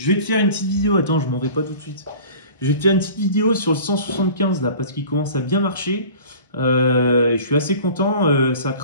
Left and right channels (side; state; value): both; inverted; correlation -0.43